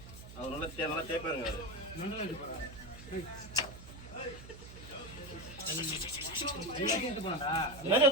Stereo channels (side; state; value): right; noise; hum, 15 dB below the sound